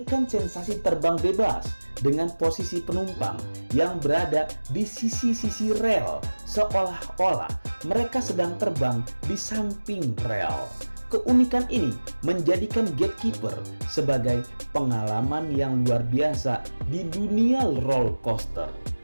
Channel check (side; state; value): both; inverted; correlation -1.00